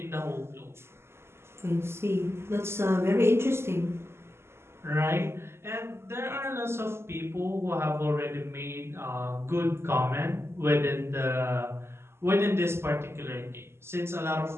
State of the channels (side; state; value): left; late; 0.12 ms